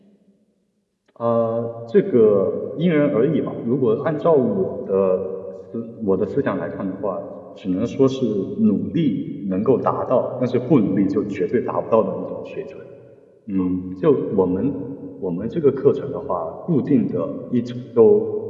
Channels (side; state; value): both; identical; correlation 1.00